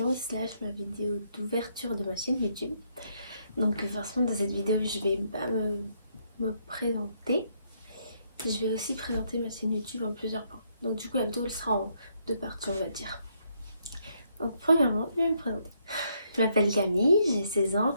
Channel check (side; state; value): both; inverted; correlation -0.73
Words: / ma vidéo d'ouverture de ma chaîne YouTube. Donc forcément dans cette vidéo je vais pas me présenter. Je vais aussi présenter ma chaîne YouTube en plusieurs points. Donc du coup la vidéo elle sera en deux parties on va dire. Donc premièrement je vais me présenter. Je m'appelle Camille, j'ai 16 ans.